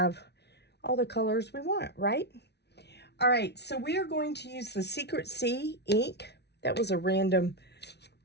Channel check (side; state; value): right; late; 0.49 ms